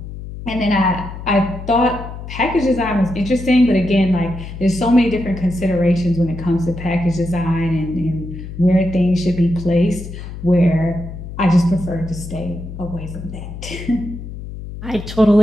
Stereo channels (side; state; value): left; noise; hum, 10 dB below the sound